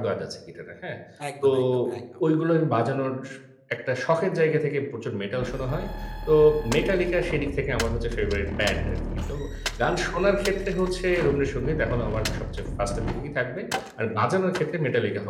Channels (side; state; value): both; identical; correlation 1.00